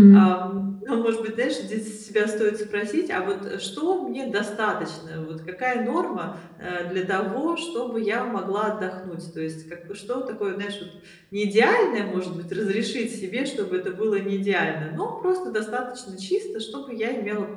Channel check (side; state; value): both; identical; correlation 1.00